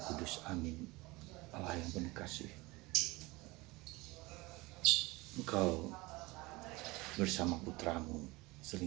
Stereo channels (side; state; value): left; quieter; 22.6 dB